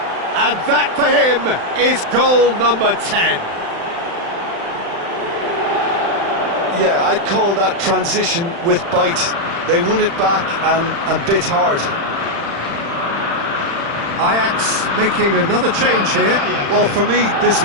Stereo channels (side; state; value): left; late; 35 ms